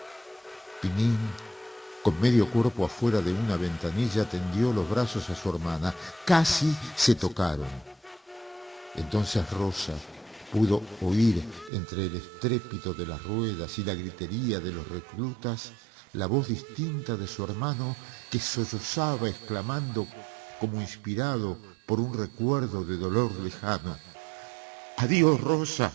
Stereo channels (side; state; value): left; drops out; at 11.7 s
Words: Pinín, con medio cuerpo afuera de una ventanilla, tendió los brazos a su hermana. Casi se tocaron. Entonces Rosa pudo oír entre el estrépito de las ruedas y la gritería de los reclutas la voz distinta de su hermano que sollozaba exclamando como inspirado por un recuerdo de dolor lejano: «Adiós, Rosa,